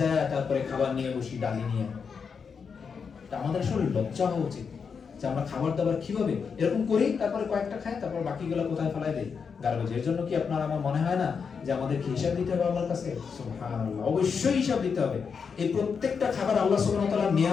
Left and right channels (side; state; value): right; quieter; 6.0 dB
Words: তারপরে খাবার নিয়ে বসি, ডালি নিয়ে। আমাদের আসলে লজ্জা হওয়া উচিত যে আমরা খাবার দাবার কিভাবে এরকম করি, তারপরে কয়েকটা খাই, তারপর বাকিগুলো কোথায় ফেলাই দেই, গার্বেজের জন্য। কি আপনার আমার মনে হয় না যে আমাদেরকে হিসাব দিতে হবে আল্লাহর কাছে? সুবহানাল্লাহ, অবশ্যই হিসাব দিতে হবে। এই প্রত্যেকটা খাবার আল্লাহ সুবহানাহু ওয়া তাআলার